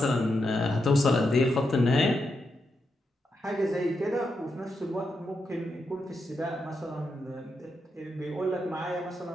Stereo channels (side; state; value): both; normal; correlation 0.84